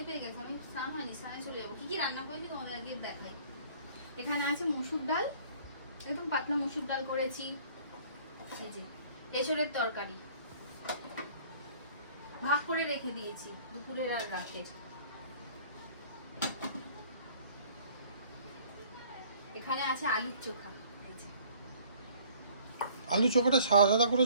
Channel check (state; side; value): inverted; both; correlation -0.54